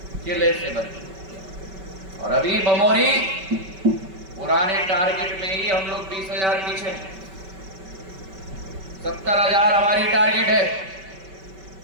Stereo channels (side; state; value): left; late; 5.2 ms